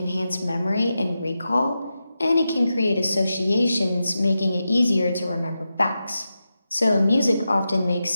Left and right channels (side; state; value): both; inverted; correlation -0.90